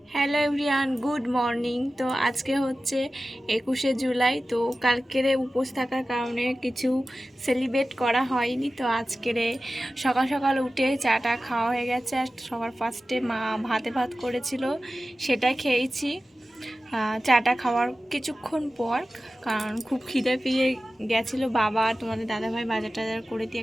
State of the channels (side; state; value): both; normal; correlation 0.95